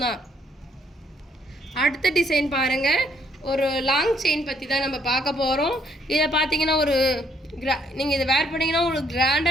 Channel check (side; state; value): both; normal; correlation 0.69